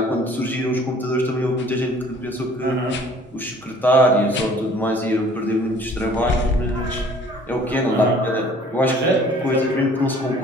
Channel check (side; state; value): both; normal; correlation 0.53